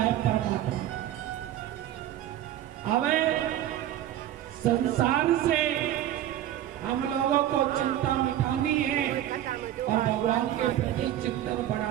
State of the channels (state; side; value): quieter; left; 12.2 dB